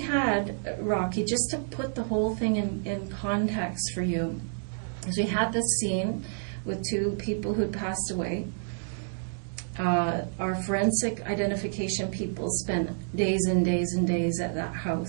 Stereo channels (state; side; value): silent; left; digital silence